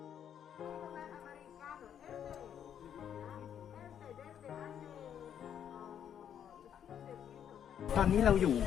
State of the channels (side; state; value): right; quieter; 9.1 dB